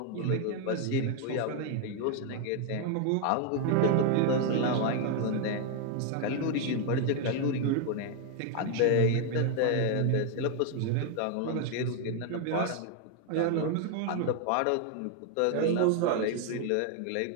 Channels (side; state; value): both; different; correlation 0.01